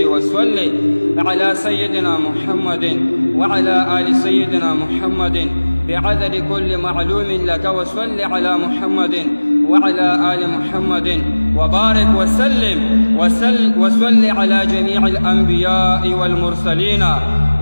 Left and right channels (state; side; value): inverted; both; correlation -1.00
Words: وصل على سيدنا محمد وعلى آل سيدنا محمد بعدد كل معلوم لك وصل على محمد وعلى آل محمد وبارك وسلم وصل على جميع الأنبياء والمرسلين